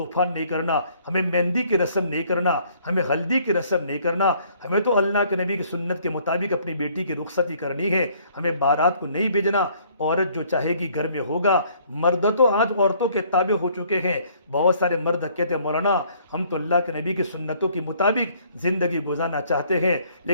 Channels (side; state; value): both; inverted; correlation -0.61